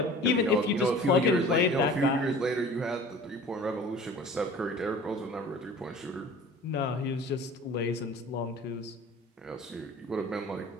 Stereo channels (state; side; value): normal; both; correlation 0.43